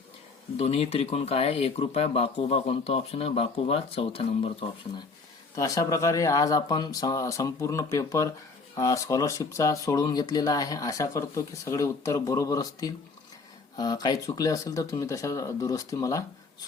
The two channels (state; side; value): quieter; right; 4.2 dB